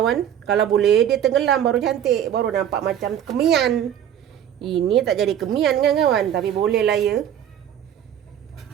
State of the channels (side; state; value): left; quieter; 10.0 dB